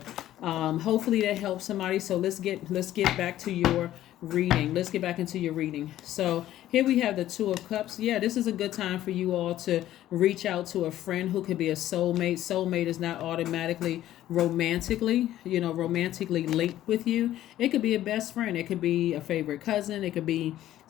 hopefully that helps somebody. So let's get back to your reading. Let's get back into your reading. So here we have the Two of Cups. Yeah, this is a good time for you all to reach out to a friend who could be a soulmate. Soulmate is not automatically romantically linked with you. It could be a best friend. It could be a favorite cousin. It could be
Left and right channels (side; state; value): right; quieter; 13.3 dB